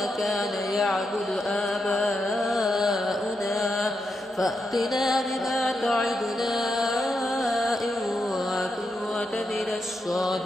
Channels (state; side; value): normal; both; correlation 0.84